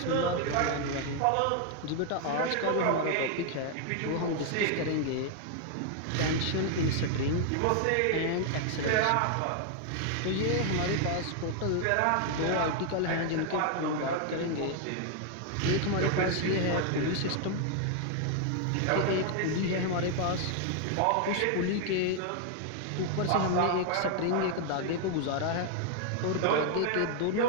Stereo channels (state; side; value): different; both; correlation 0.00